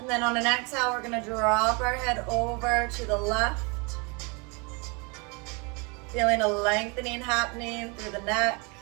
And then on an exhale, we're gonna drop our head over to the left. Feeling a lengthening happening through the neck.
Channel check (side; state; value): left; quieter; 30.7 dB